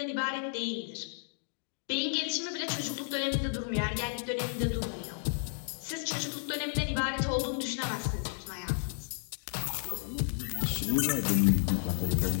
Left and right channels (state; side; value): silent; right; digital silence